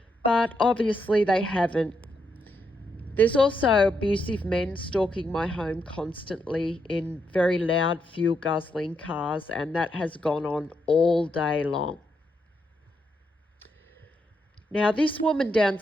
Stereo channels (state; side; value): normal; both; correlation 0.80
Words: But obviously they haven't. There's also abusive men stalking my home constantly in very loud, fuel-guzzling cars, and that has gone on all day long. Now, this woman